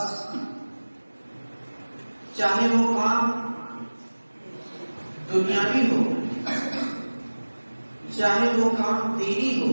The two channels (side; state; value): both; inverted; correlation -1.00